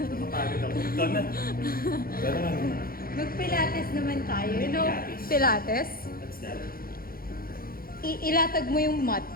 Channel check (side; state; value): right; late; 0.43 ms